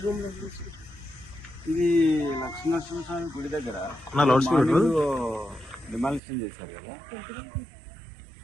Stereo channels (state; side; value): drops out; left; at 6.2 s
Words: రూమ్లు వదిలేసి. ఇది లక్ష్మీనరసింహస్వామి గుడి దగ్గర డిమాలిషన్ చేశారు కదా,